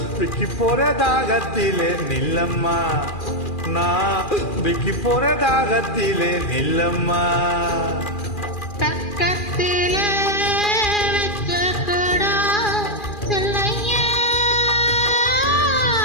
விக்கி போற தாகத்திலே நில்லம்மா, நான் விக்கி போற தாகத்திலே நில்லம்மா. பக்கத்திலே வச்ச குடம் சொல்லையா,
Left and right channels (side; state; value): right; late; 2.4 ms